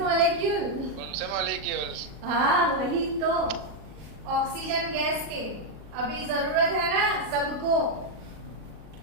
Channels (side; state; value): left; late; 40 ms